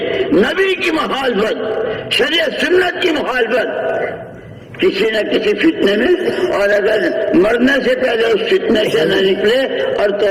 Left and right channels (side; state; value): both; identical; correlation 1.00